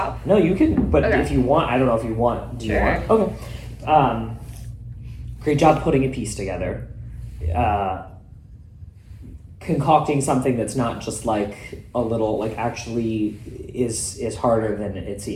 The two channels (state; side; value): identical; both; correlation 1.00